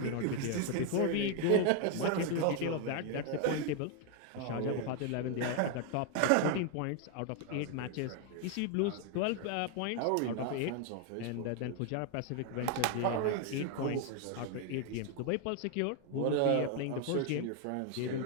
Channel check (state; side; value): different; both; correlation 0.01